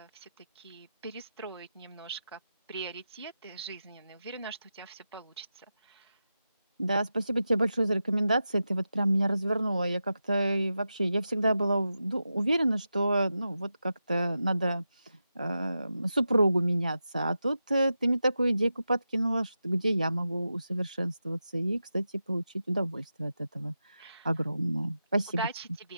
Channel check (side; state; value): both; inverted; correlation -0.90